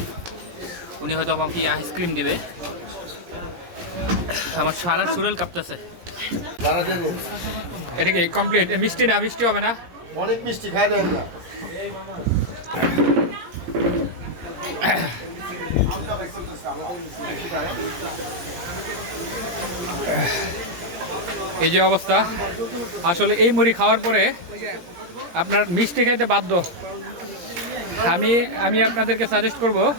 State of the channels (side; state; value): left; late; 17 ms